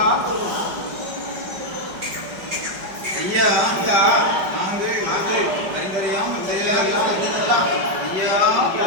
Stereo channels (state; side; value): late; left; 5.3 ms